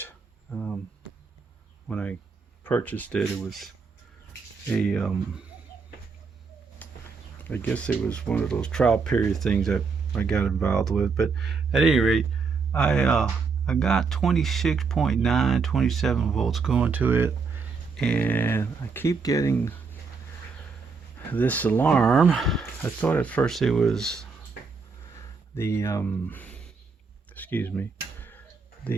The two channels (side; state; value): left; quieter; 4.9 dB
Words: Um, when I purchased it, it was a, I guess it was one of those trial period things that I got involved with. But at any rate, I got 26.9, 27 volts going to it, and I keep getting this alarm. I thought at first it was the excuse me,